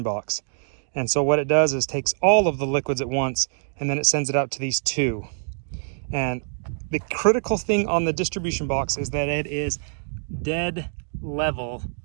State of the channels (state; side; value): silent; left; digital silence